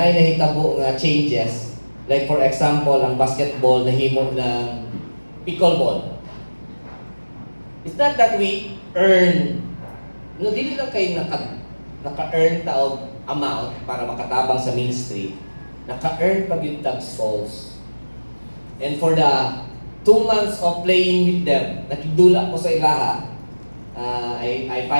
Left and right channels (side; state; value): both; inverted; correlation -1.00